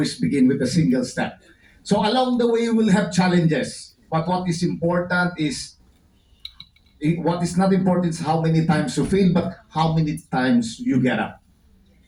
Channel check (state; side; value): identical; both; correlation 1.00